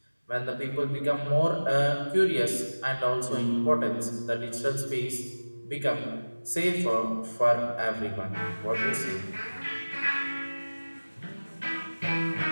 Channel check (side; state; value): both; inverted; correlation -1.00